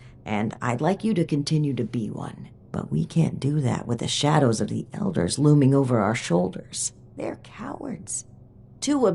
and I'd like you to continue to be one. But we can't do that with the shadows of the Elders looming over our shoulders. They're cowards. Too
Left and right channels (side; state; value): both; identical; correlation 1.00